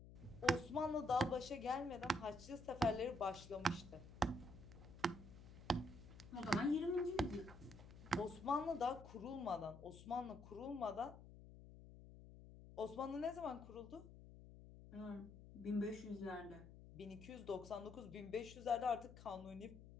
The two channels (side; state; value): left; noise; hum, 16 dB below the sound